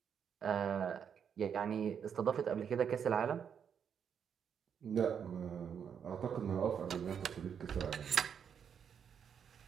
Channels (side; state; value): left; quieter; 7.7 dB